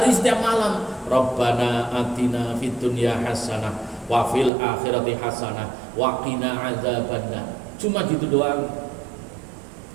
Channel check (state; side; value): drops out; left; at 4.5 s